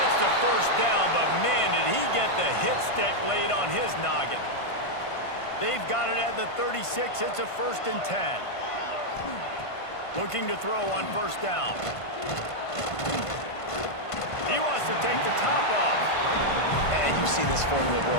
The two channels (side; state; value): right; late; 1.5 ms